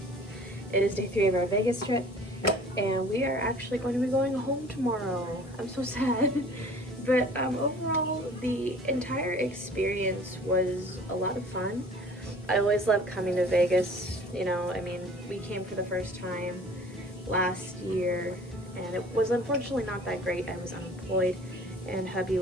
It is day 3 of our Vegas trip. And we are actually going to be going home tomorrow. I'm so sad. But overall, the entire experience was a lot of fun. I always love coming to Vegas. We came for the first time last year. And it was unfortunately not that great. I was unemployed, and hubby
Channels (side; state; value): both; normal; correlation 0.48